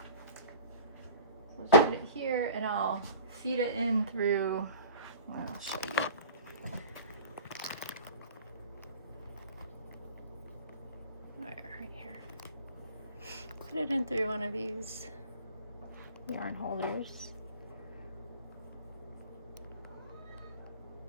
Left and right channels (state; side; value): inverted; both; correlation -0.42